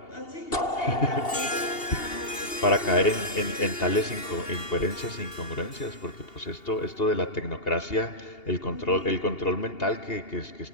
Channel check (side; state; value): right; late; 2.8 ms